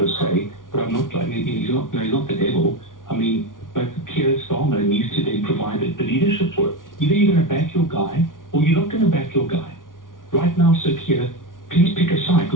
se, but I'm not like he's not the devil. I mean, but Keir Starmer needs to then provide the leadership for it. Either you're going to back your guy or you're not going to back your guy. Right now, Sir Keir, please pick a side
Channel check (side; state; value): right; late; 0.88 ms